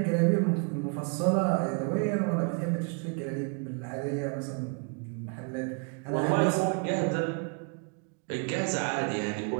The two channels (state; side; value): quieter; left; 38.3 dB